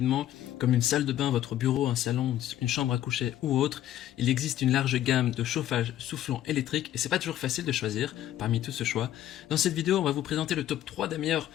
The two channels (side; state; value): right; quieter; 12.5 dB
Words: comme une salle de bain, votre bureau, un salon, une chambre à coucher ou autre. Il existe une large gamme de chauffage soufflant électrique et c'est pas toujours facile de choisir parmi tout ce choix. Dans cette vidéo, on va vous présenter le top 3 des meilleurs